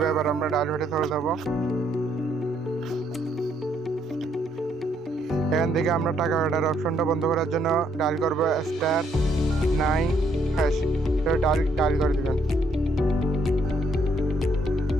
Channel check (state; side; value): normal; both; correlation 0.71